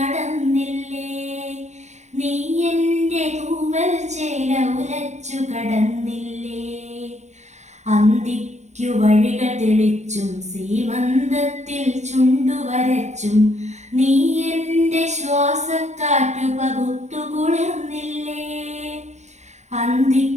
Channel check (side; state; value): left; late; 0.33 ms